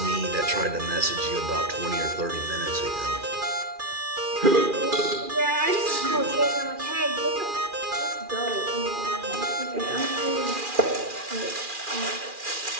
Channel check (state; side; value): late; left; 2.4 ms